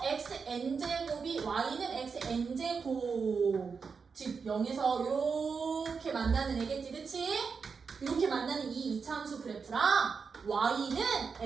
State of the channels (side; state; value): left; quieter; 5.4 dB